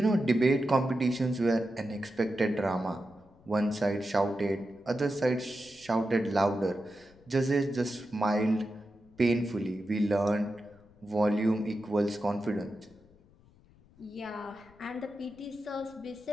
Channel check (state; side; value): noise; left; rumble, 28 dB below the sound